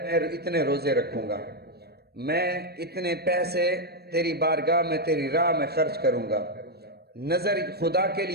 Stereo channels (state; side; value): late; left; 0.47 ms